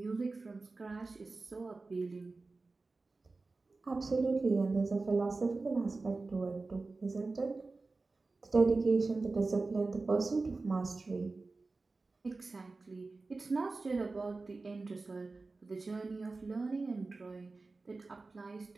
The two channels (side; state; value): left; quieter; 3.7 dB